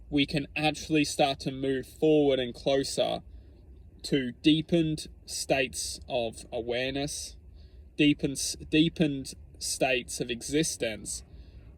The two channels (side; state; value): both; identical; correlation 1.00